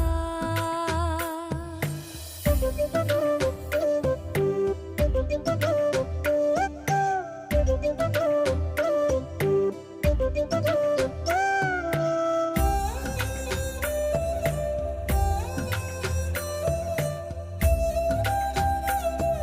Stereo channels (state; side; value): identical; both; correlation 1.00